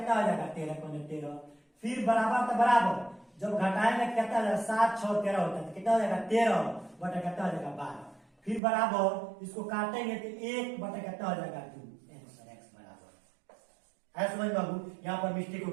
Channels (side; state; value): left; drops out; at 8.6 s